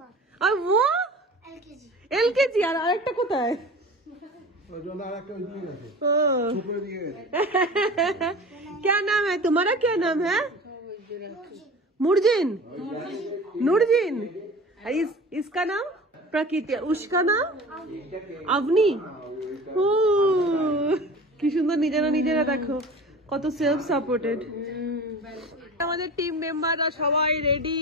और वो एलकेजी। আর আরেকটা কোথায়? क्या नाम है तुम्हारा? क्या नाम है? नूरजीन। इसका नाम प्रकृति, उसका नाम अवनी। ও কি সুন্দর, নিজেরা দেখো কত সেলফ সাপোর্টেড। আমাদের টিম মেম্বাররা সবাই রেডি।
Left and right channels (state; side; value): normal; both; correlation 0.38